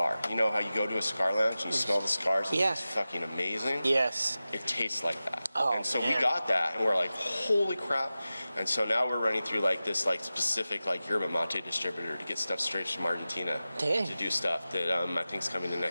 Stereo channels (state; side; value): inverted; both; correlation -0.95